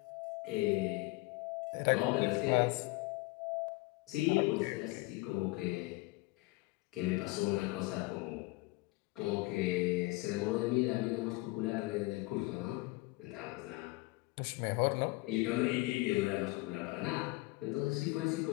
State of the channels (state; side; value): quieter; right; 22.5 dB